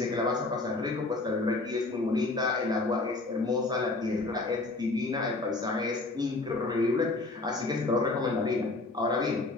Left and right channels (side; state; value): right; quieter; 3.2 dB